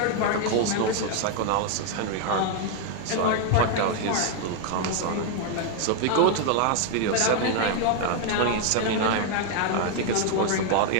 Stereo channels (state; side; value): different; both; correlation 0.01